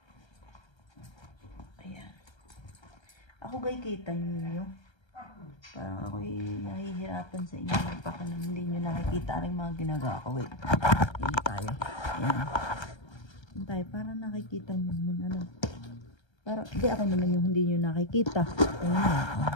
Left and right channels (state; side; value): late; right; 1.3 ms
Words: Ayan. Ako gay kita niyo. Parang ako'y nahihirapan sa inyo. Baka naman hindi nyo nakikita rin mga ginagawa ko. Wait. Hindi tayo. Ayan. Tayo, para nakikita nyo naman, ano. Para, di ako naman yung hindi nyo nakikita. Ayun na.